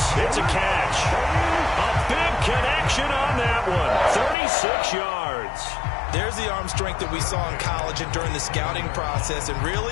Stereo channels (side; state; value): right; drops out; at 4.4 s